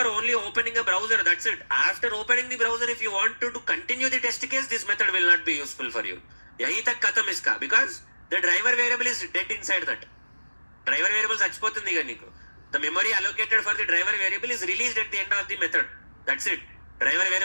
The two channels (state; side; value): inverted; both; correlation -1.00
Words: only opening a browser. That's it. After opening the browser, if you want to continue the test case, this method will not be useful for you. यही तक खत्म इसका, because the driver variable is dead inside that. Driver variable చచ్చిపోతుంది ఇక నీకు. The memory allocated for the driver variable is released at the end of the method. That's it. Driver